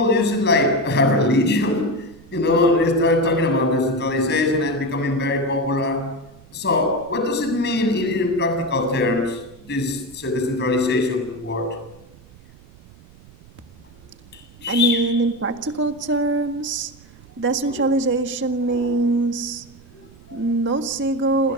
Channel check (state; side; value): noise; right; rumble, 23 dB below the sound